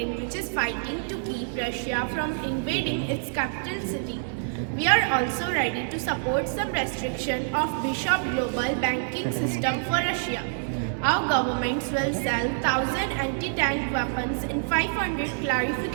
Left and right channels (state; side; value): silent; left; 60 dB below the other